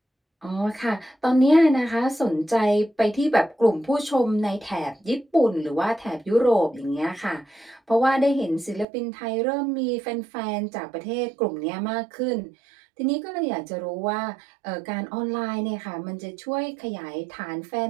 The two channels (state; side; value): drops out; left; at 8.8 s